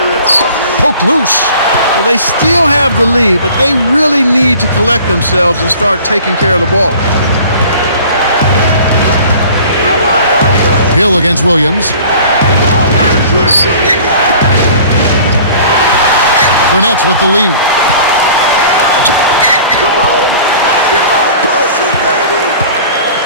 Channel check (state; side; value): inverted; both; correlation -0.47